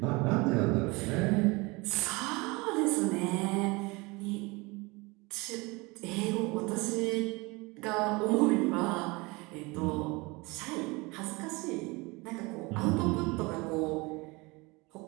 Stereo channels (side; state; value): left; quieter; 25.1 dB